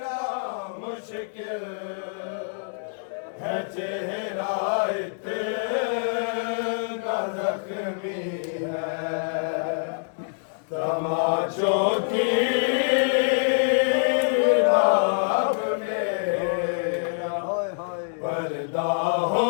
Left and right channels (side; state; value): right; silent; digital silence